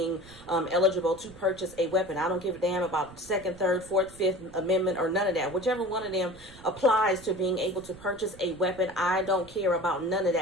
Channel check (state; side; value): noise; right; rumble, 21 dB below the sound